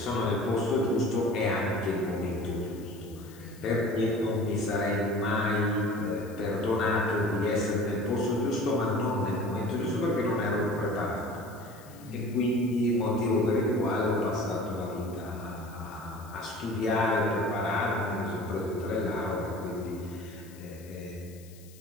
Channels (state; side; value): noise; left; hiss, 23 dB below the sound